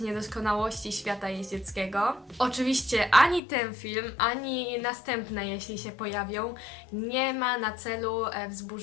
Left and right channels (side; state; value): right; drops out; at 3.4 s